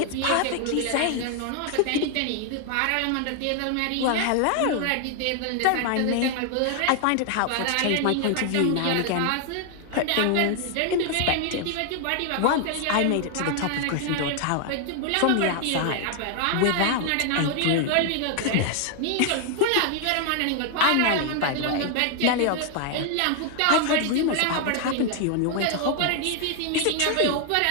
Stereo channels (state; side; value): different; both; correlation 0.00